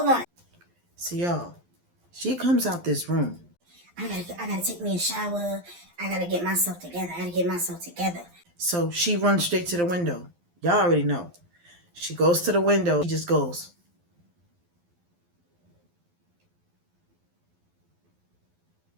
on. So y'all, she comes out this room. I gotta take me a shower. I gotta get myself together. So she runs straight to the window. Y'all already know. She goes to the window. She just goes.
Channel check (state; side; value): late; left; 12 ms